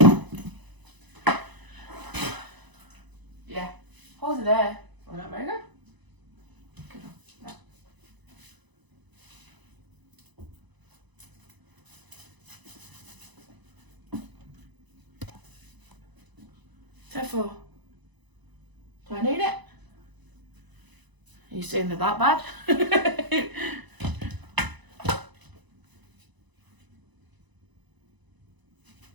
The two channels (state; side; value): late; left; 1.0 ms